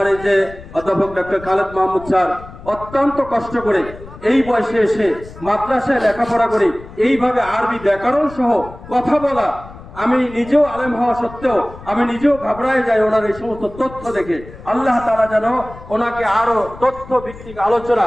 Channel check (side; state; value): left; noise; rumble, 17 dB below the sound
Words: এই যে অধ্যাপক ডক্টর খালেদ মাহমুদ স্যার অত্যন্ত কষ্ট করে এই বয়সে এসে মাদ্রাসায় লেখাপড়া করে এইভাবে আরবি ব্যাকরণ সহ কথা বলা, আমি নিজেও আলেম হওয়া সত্ত্বেও আমি নিজেও ঘাবড়ায় যাই ওনার এই সমস্ত তথ্য দেখে। আল্লাহ তাআলা যেন ওনাকে আরো তথ্য ভিত্তিক আলোচনা